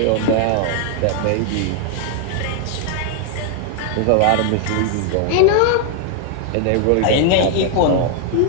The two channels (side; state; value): both; different; correlation 0.00